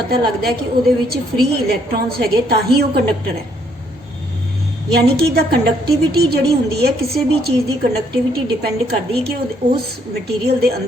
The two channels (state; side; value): normal; both; correlation 0.69